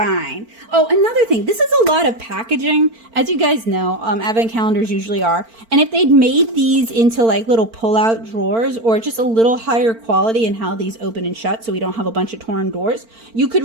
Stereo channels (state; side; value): late; left; 4.4 ms